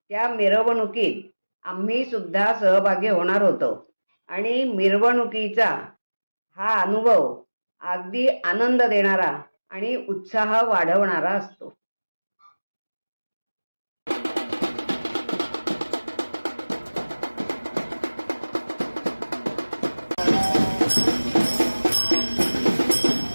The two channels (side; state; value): both; inverted; correlation -1.00